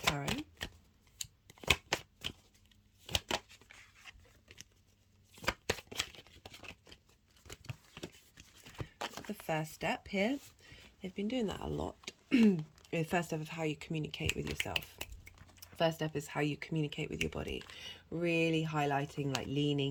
The first step here. They've been doing that a lot. The first step of how you communicate with yourself. First step is how you communicate with your body. Really highlighting, like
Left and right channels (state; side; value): identical; both; correlation 1.00